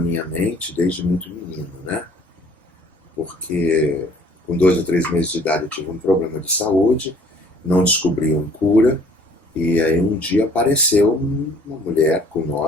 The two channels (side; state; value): both; normal; correlation 0.56